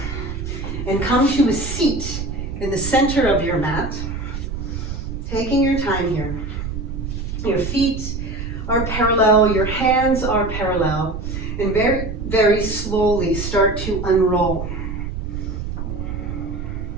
and come to a seat in the center of your mat. Taking your time here. Your feet are parallel, your hands are parallel, and very, very slowly start to unroll.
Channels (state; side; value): noise; right; rumble, 6 dB below the sound